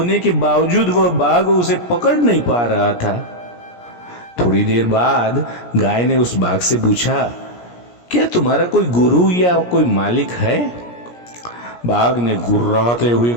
के बावजूद वह बाघ उसे पकड़ नहीं पा रहा था। थोड़ी देर बाद गाय ने उस बाघ से पूछा, क्या तुम्हारा कोई गुरु या कोई मालिक है? बाघ ने गुर्राते हुए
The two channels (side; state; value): right; late; 17 ms